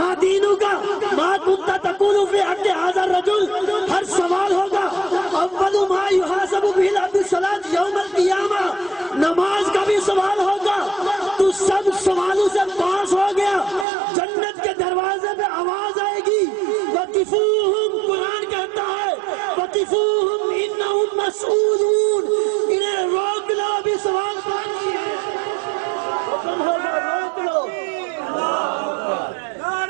دینک ما کنت تقول فی حق ھذا الرجل، ہر سوال ہوگا۔ اول ما یحاسب بہ العبد الصلاۃ یوم القیامہ، نماز کا بھی سوال ہوگا، تو سب سوالوں سے پاس ہو گیا، جنت کے دروازے پہ آواز آئے گی، وقفوہم، قرآن کہتا ہے وقفوہم انہم مسئولون، انہیں روک لو، بھی سوال باقی ہے، حکم ہوگا روک لو۔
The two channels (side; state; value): left; drops out; at 13.9 s